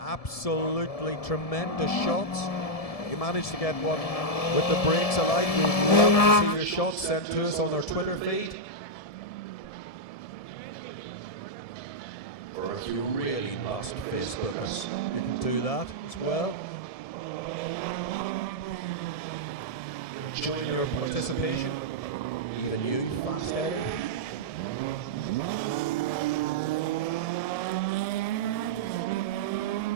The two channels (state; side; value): late; right; 1.7 ms